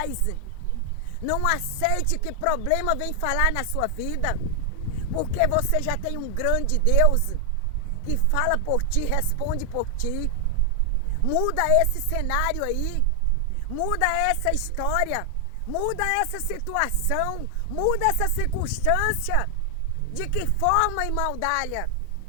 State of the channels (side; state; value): both; different; correlation 0.00